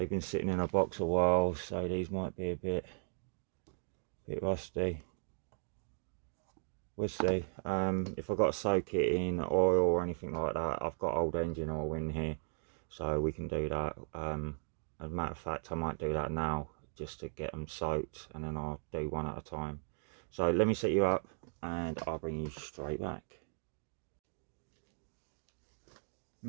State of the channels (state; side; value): silent; left; digital silence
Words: been sitting in a box a while, so these might be a bit rusty. We'll see. If I've got to soak it in oil or anything like that, I've got old engine oil in here, so we can do that. As a matter of fact, I might do that now just to get them soaked, and then I'll do one at a time. So let me set you up and I'll bring you straight back.